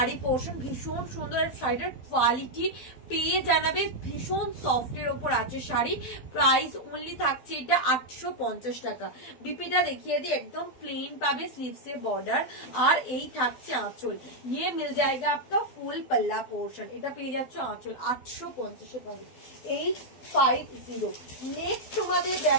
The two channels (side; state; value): right; late; 12 ms